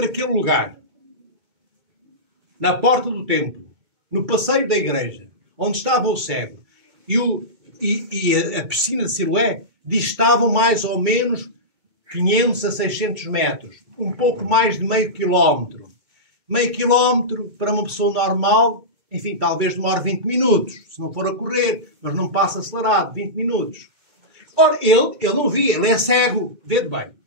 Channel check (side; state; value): left; late; 2.2 ms